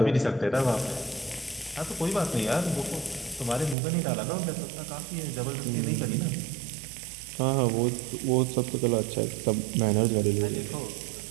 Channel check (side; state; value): left; drops out; at 3.8 s